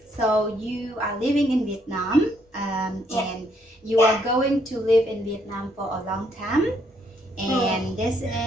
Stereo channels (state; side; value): normal; both; correlation 0.71